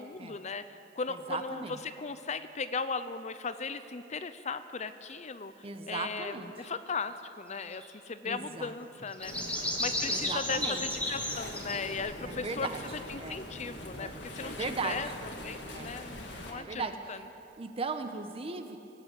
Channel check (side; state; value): right; noise; hiss, 29 dB below the sound